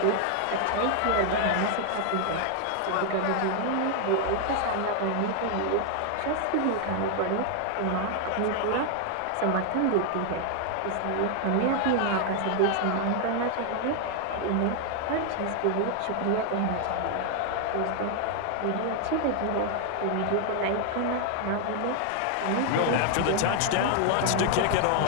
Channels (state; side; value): different; both; correlation 0.00